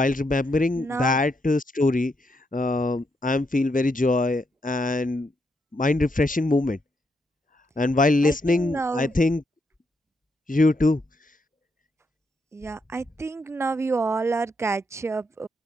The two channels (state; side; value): normal; both; correlation 0.79